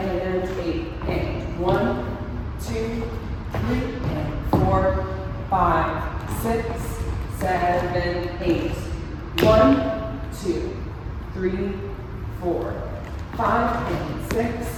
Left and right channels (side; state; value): both; identical; correlation 1.00